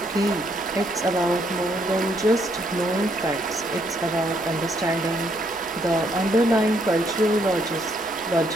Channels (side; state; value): both; normal; correlation 0.71